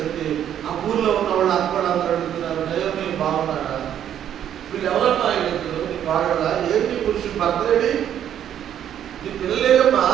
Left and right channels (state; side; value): quieter; left; 10.1 dB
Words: ఆ ఊర్లో ఉన్న వాళ్ళు అక్కడ అందరూ అడుగుతున్నారు, నయోమి బాగున్నాడా, వీళ్ళు ఎవరన్నా అడుగుతారు, నీ వాడడా, ఏంటి పురుషుడు భర్తలేడి, నీ పిల్లలేదమ్మా,